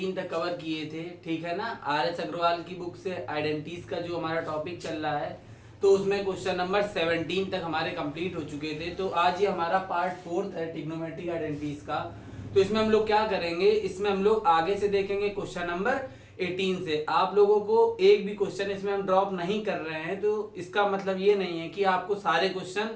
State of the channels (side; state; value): both; identical; correlation 1.00